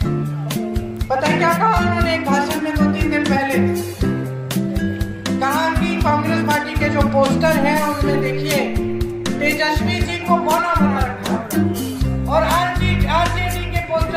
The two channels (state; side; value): identical; both; correlation 1.00